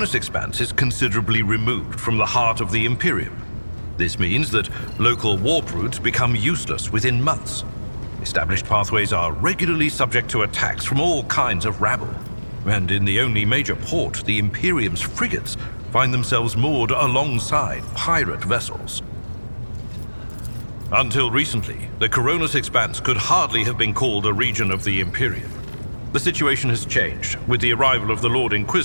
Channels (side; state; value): both; inverted; correlation -1.00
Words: Expanse is considerably removed from the heart of the Imperium. This means that local warp routes become useless within months. Established pathways are regularly subject to attacks from all kinds of rabble. And in the only major port, the Imperium's frigates find themselves moored alongside pirate vessels. Until recently, the Coronis Expanse could hardly have been called a region of the Imperium. The situation has changed with the arrival of the Lord